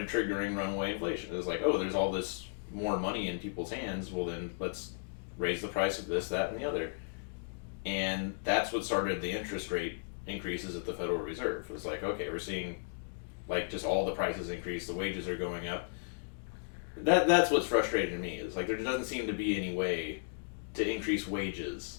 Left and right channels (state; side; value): silent; right; digital silence